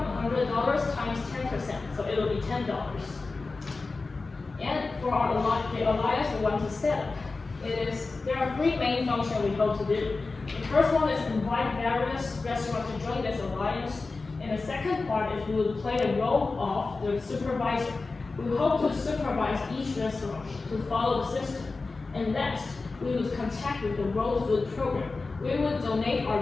$100 times 10%, so it will be $10. And for the alliance we want to set up, there are 3 main functions we hope to do. The first one is invite various restaurants to join this alliance, and the second part is we will play the role of the supervisor. We hope to supervise each restaurant to follow the system. And next, we will contact with the World Food Program. We will donate our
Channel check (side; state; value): right; quieter; 3.8 dB